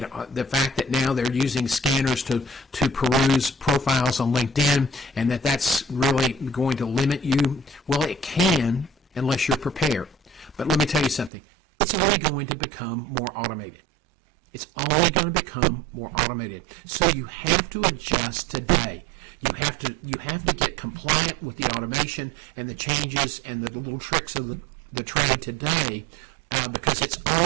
the fact that now they're using scanners to peruse profiles on LinkedIn and that's really going to limit you, well, it can, unless you're prepared. But let me tell you something. It's only going to become more automated. It's only going to become more automated. So you have to adjust today. You have to get compliant with the automation and the changes and the little tricks of the trade today, because it's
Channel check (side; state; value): left; drops out; at 11.3 s